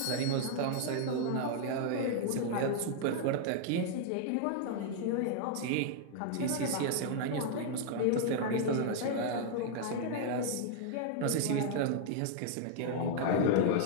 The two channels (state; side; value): different; both; correlation -0.01